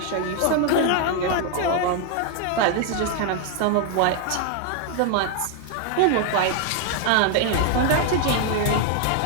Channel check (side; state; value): both; different; correlation 0.00